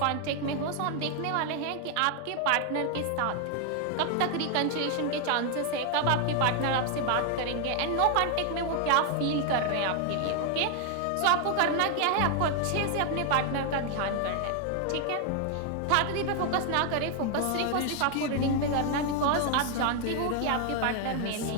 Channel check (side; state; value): both; different; correlation 0.00